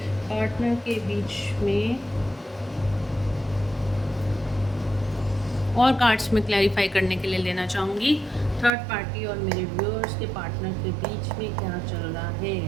पार्टनर के बीच में। और कार्ड्स में क्लैरिफाई करने के लिए लेना चाहूँगी थर्ड पार्टी और मेरे व्यूअर्स के पार्टनर के बीच में क्या चल रहा है।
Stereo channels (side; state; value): left; drops out; at 8.7 s